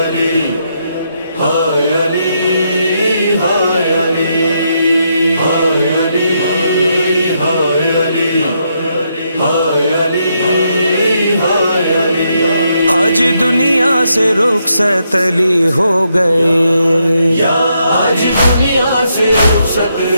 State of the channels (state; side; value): inverted; both; correlation -0.79